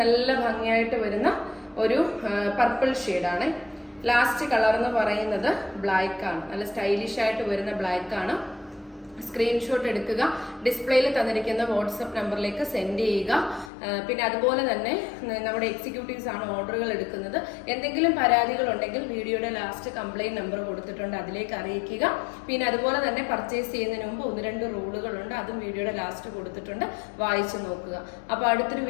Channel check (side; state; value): right; drops out; at 13.7 s